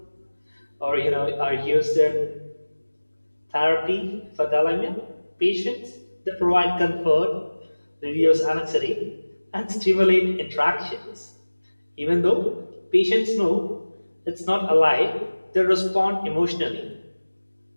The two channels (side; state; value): both; inverted; correlation -1.00